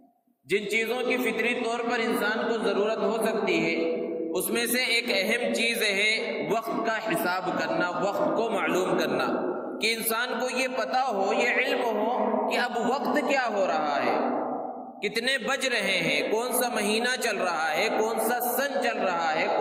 جن چیزوں کی فطری طور پر انسان کو ضرورت ہو سکتی ہے، اس میں سے ایک اہم چیز ہے وقت کا حساب کرنا، وقت کو معلوم کرنا، کہ انسان کو یہ پتہ ہو، یہ علم ہو کہ اب وقت کیا ہو رہا ہے، کتنے بج رہے ہیں، کون سا مہینہ چل رہا ہے، کون سا سن چل رہا ہے،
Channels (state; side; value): identical; both; correlation 1.00